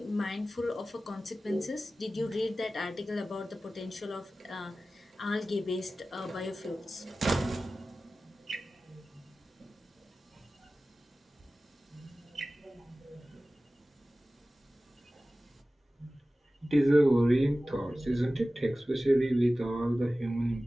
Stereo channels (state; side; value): normal; both; correlation 0.96